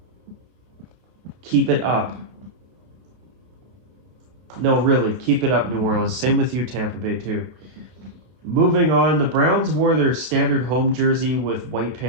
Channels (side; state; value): left; late; 32 ms